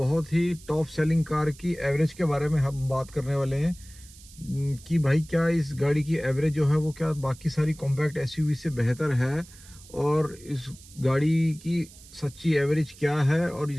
ही टॉप सेलिंग कार की एवरेज के बारे में हम बात करने वाले हैं। कि भाई क्या इस गाड़ी की एवरेज जो है वो क्या बाकी सारी कॉम्पैक्ट एसयूवी से बेहतर है, और इस गाड़ी की सच्ची एवरेज क्या है, और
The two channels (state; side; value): noise; right; hiss, 21 dB below the sound